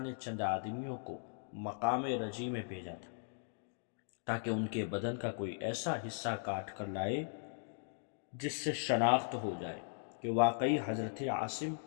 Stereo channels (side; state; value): right; silent; digital silence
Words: نے چند آدمیوں کو مقام رجی میں بھیجا تھا تاکہ ان کے بدن کا کوئی ایسا حصہ کاٹ کر لائے جس سے شناخت ہو جائے کہ واقعی حضرت عاصم